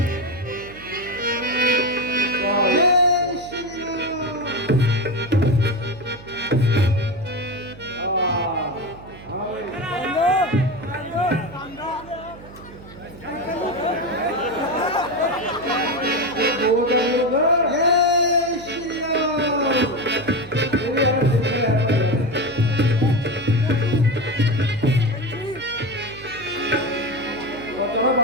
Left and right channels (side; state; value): right; noise; hum, 18 dB below the sound